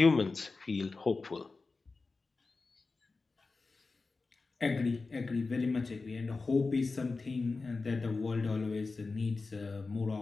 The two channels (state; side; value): quieter; right; 3.9 dB